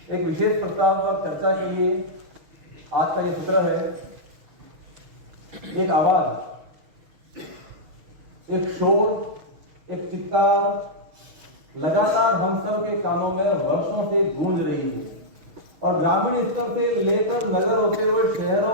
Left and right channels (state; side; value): late; left; 6.4 ms